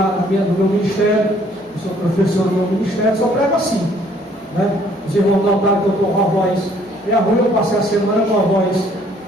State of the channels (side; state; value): both; normal; correlation 0.61